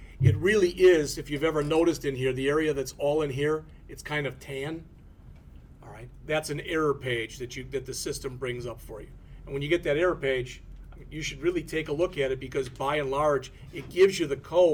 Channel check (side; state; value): both; identical; correlation 1.00